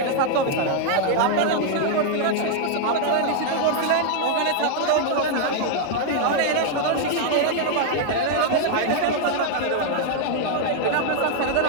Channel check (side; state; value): both; different; correlation 0.00